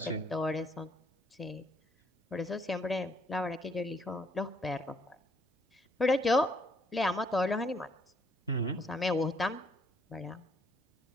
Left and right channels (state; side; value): normal; both; correlation 0.69